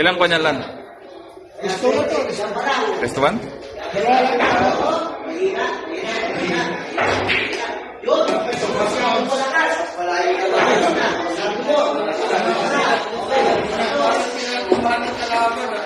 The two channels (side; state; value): both; identical; correlation 1.00